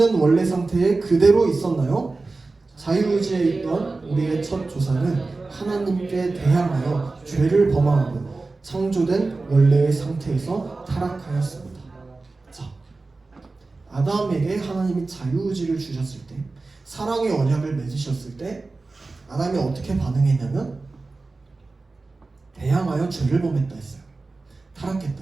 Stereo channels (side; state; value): left; quieter; 3.6 dB